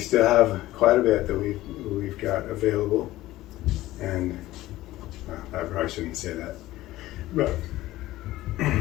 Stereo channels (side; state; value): right; quieter; 16.3 dB